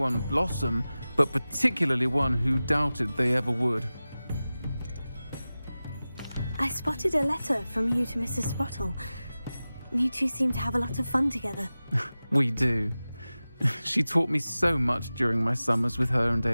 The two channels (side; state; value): both; inverted; correlation -0.96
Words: blossom, but particularly one who doubted they ever would. I spotted a letter from you to Mrs. Sprottle. You two seem to have a lot of fun together. We do. She taught me so much during my summers with her and